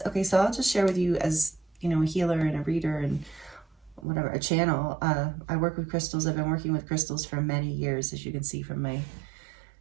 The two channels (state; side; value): drops out; left; at 4.0 s